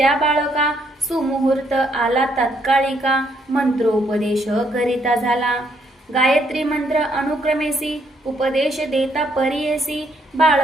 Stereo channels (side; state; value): both; normal; correlation 0.72